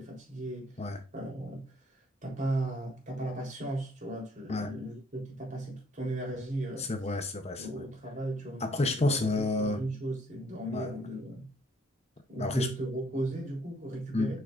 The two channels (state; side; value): normal; both; correlation 0.65